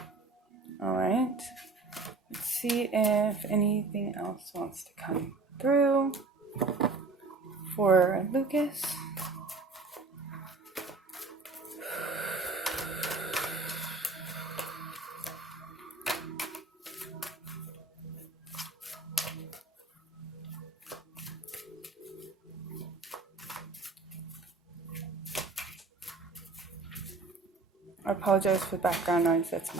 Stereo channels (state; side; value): quieter; left; 3.8 dB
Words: All right. Let's see if anything else wants to come through for Lucas. I apologize for background noise. That's